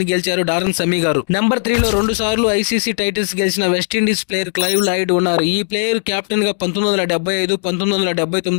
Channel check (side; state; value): right; silent; digital silence